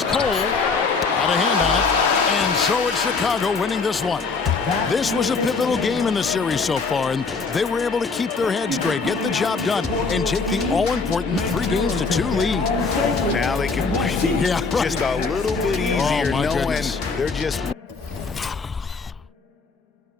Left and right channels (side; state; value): right; quieter; 4.5 dB